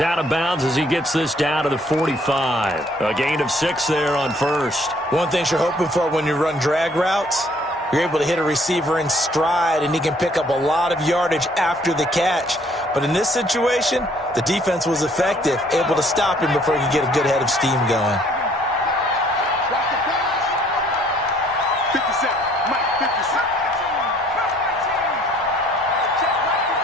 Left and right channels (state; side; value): normal; both; correlation 0.61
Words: of bounds as he gets this down to the 45. A gain of 6 there on first. One thing you're hoping for when you run drag routes, you're able to hit a receiver in stride, and he can pick up a lot of yardage after the catch. But in this situation, the defense was effective, able to stop him before he could get a good head of steam going. 57, Mike 57. Mike